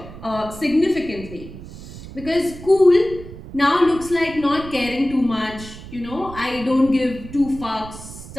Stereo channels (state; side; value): noise; right; rumble, 14 dB below the sound